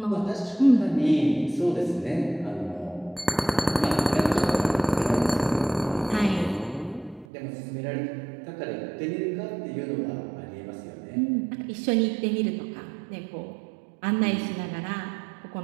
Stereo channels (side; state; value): left; drops out; at 7.2 s